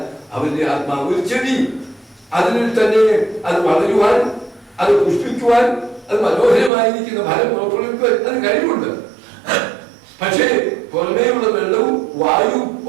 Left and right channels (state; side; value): drops out; left; at 6.7 s